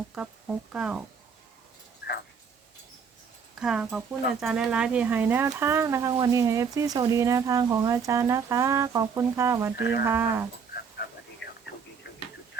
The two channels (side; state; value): left; quieter; 6.1 dB